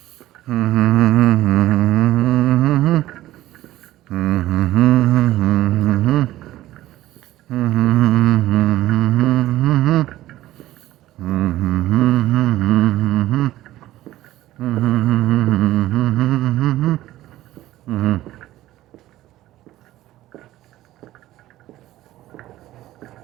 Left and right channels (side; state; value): left; quieter; 15.1 dB